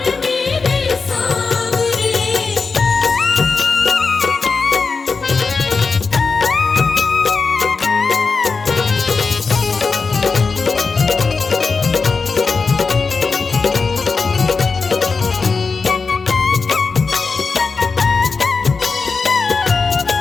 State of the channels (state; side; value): quieter; right; 4.6 dB